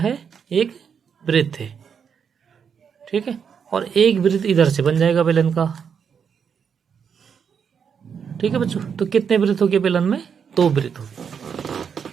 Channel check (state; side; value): quieter; left; 7.0 dB